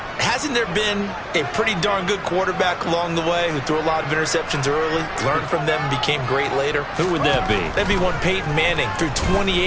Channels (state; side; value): identical; both; correlation 1.00